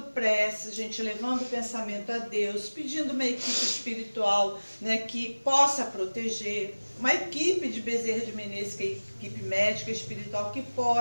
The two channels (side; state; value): both; inverted; correlation -1.00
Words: prece, a gente levando o pensamento a Deus, pedindo uma equipe espiritual, né, que possa proteger, uma equipe de Bezerra de Menezes, que é a equipe médica espiritual, que